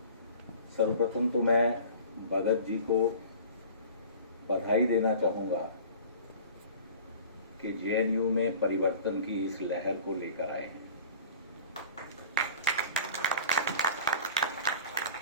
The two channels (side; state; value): both; inverted; correlation -0.42